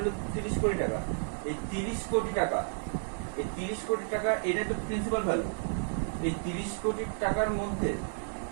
30 কোটি টাকা। এই 30 কোটি টাকা এটা তো প্রিন্সিপাল ভ্যালু। এই 30 কোটি টাকার মধ্যে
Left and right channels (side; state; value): left; silent; digital silence